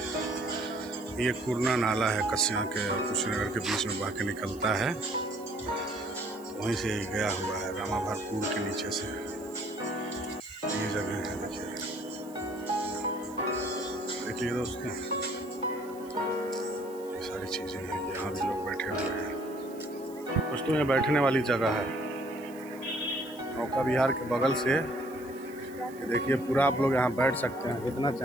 ये कुरना नाला है कस्या के और कुशीनगर के बीच में बह के निकलता है, वहीं से गया हुआ है रामाभार पुल के नीचे से। ये जगह है देखिए, देखिए दोस्तों, ये सारी चीज़ें हैं, यहाँ भी लोग बैठे हुए हैं दोस्तों। ये बैठने वाली जगह है नौका विहार के बगल से। ये देखिए पूरा आप लोग यहाँ बैठ सकते हैं, जितना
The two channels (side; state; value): right; noise; hiss, 22 dB below the sound